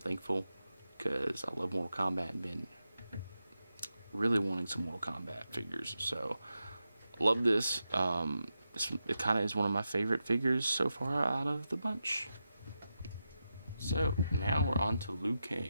because I love Mortal Kombat and been really wanting some Mortal Kombat figures. So, love this. It kind of is one of my favorite figures so far out of the bunch. So, now we're on to Liu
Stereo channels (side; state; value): both; inverted; correlation -0.89